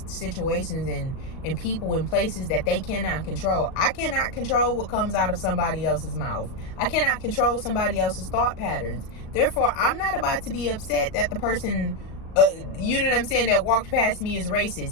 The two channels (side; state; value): right; late; 38 ms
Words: situations and people and places that they cannot control. I cannot control what comes out of somebody else's mouth. I cannot control somebody else's thought patterns. Therefore, I'm not about to be upset that the person, you know what I'm saying, that walked past me is